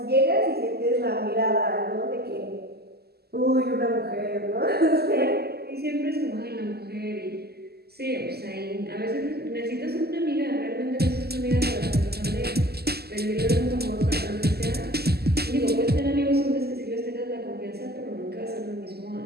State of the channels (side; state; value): left; late; 0.46 ms